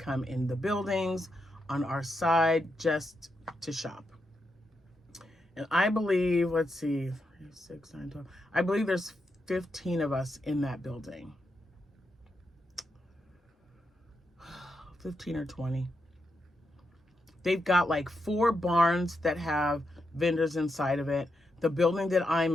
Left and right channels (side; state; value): both; normal; correlation 0.84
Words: in the buildings on our side just to shop. And I believe, let's see, 3, 6, 9, 12. I believe there's 15 of us in that building. 15 or 20. They've got like 4 barns that have vendors inside of it. The building that I'm